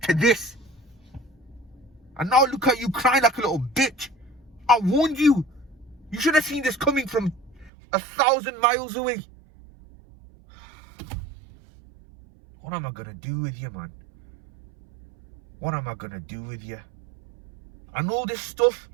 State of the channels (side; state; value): left; drops out; at 7.7 s